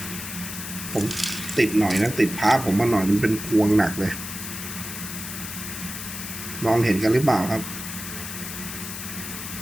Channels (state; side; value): noise; left; hiss, 8 dB below the sound